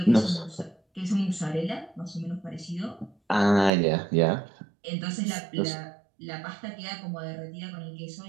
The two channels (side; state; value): left; drops out; at 3.7 s